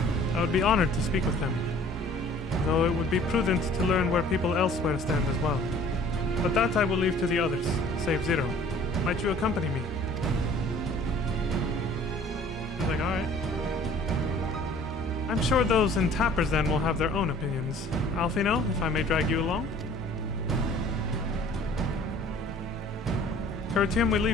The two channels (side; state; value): both; normal; correlation 0.52